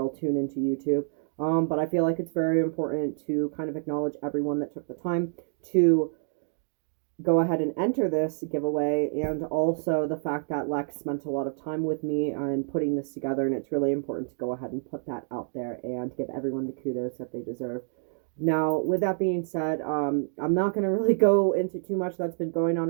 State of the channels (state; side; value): silent; left; digital silence